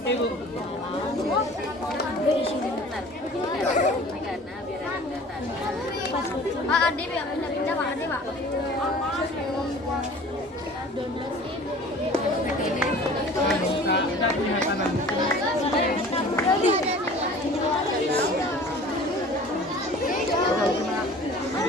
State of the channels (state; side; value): normal; both; correlation 0.45